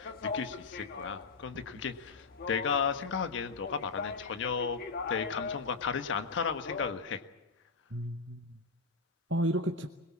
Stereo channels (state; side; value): quieter; right; 4.1 dB